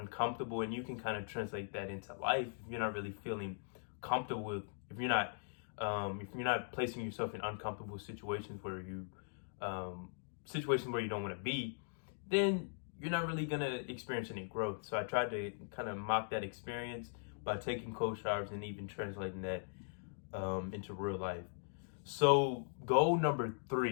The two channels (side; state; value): right; silent; digital silence